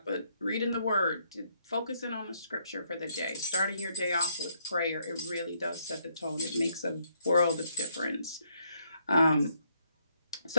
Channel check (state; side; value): inverted; both; correlation -0.71